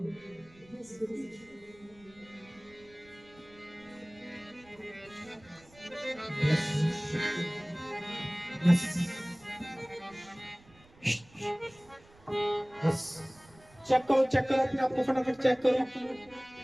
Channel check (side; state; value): right; noise; rumble, 26 dB below the sound